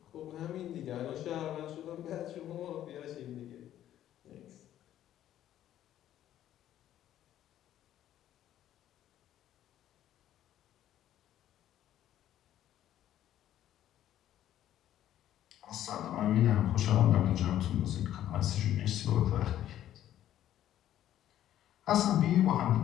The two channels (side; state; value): right; quieter; 12.0 dB